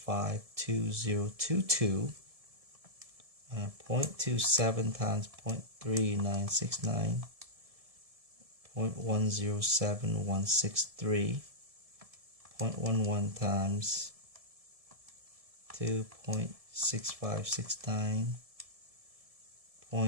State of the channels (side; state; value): left; late; 1.7 ms